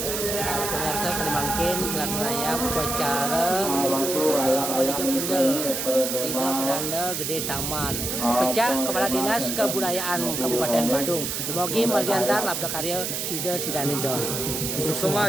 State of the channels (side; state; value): right; noise; hiss, 2 dB below the sound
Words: pemirsa Salimangkin, Kelat Raya, upacara Maliga Punggel, Ida Pedanda Gede Taman, Pecah Kepala Dinas Kebudayaan Kabupaten Badung, Demogi Margiantar Labda Karya Sida Sidanidon. Susema